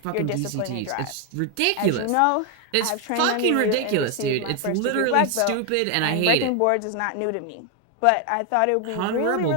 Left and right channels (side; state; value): both; different; correlation 0.01